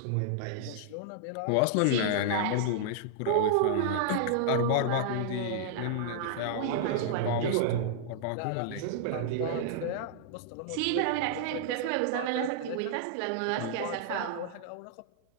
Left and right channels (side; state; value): both; different; correlation -0.01